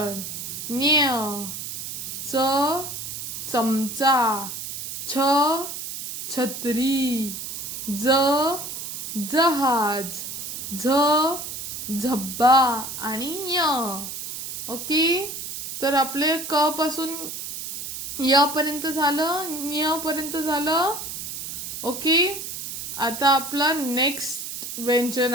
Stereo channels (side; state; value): right; noise; hiss, 7 dB below the sound